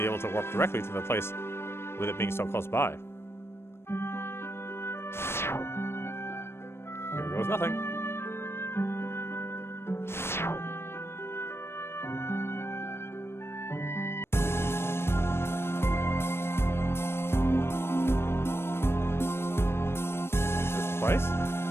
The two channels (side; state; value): right; late; 0.12 ms